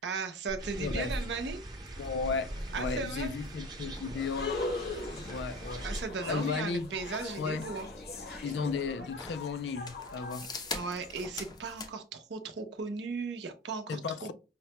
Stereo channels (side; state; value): both; normal; correlation 0.33